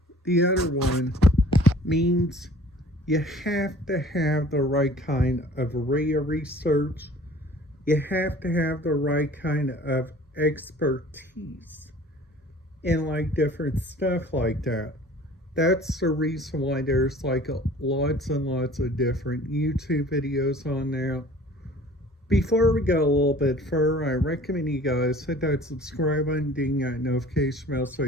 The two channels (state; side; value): normal; both; correlation 0.48